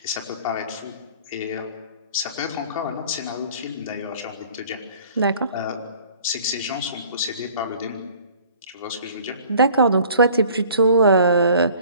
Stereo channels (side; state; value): both; inverted; correlation -0.51